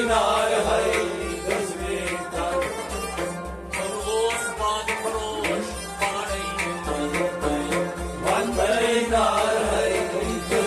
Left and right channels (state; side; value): identical; both; correlation 1.00